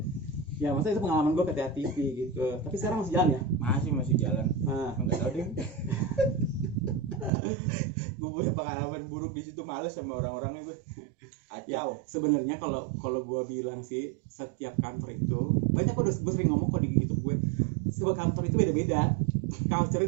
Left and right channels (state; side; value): drops out; left; at 7.3 s